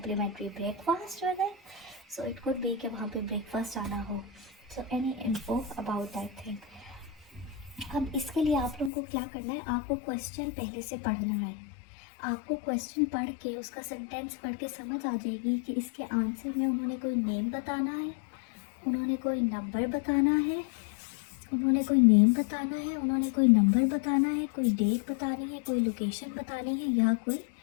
breakfast with it? So it could be कि वहाँ पे breakfast आना हो, so any info about that thing. अब इसके लिए आप लोगों को क्या करना है, आपको क्वेश्चन पहले से पढ़ना है। आपको क्वेश्चन पढ़ के उसका सेंटेंस पढ़ के समझ आ जाएगी कि इसके आंसर में उन्होंने कोई नेम बताना है, उन्होंने कोई नंबर बताना है, उन्होंने कोई नेम बताना है, उन्होंने कोई नंबर बताना है, कोई डेट बतानी है, कोई लोकेशन बतानी है या कोई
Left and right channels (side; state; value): right; drops out; at 8.9 s